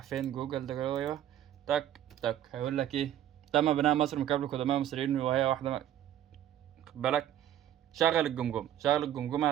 فين جوجل ده جوه، تك تك هيقول لك ايه، تم بناء مصر من قبل القدماء المصريين وهي واحده خد بالك. شغل الجمجمه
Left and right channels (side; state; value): left; quieter; 11.4 dB